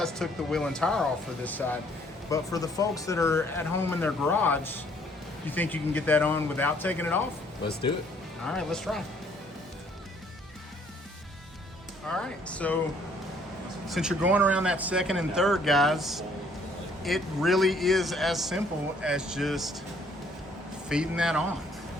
took the wheel and tire off for this side, but for the folks that are at home in their garage, you think you can get that on without taking it off? Let's do it. All right, let's try. All right, so since you're going around that second and third, guys, it really is as simple as just feeding that on.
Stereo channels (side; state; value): both; normal; correlation 0.63